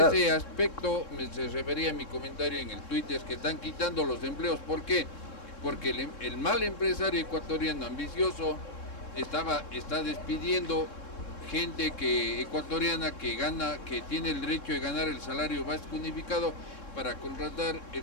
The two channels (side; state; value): right; late; 3.7 ms